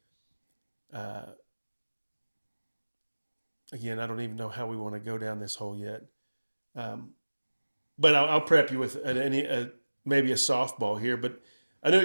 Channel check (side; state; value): both; inverted; correlation -1.00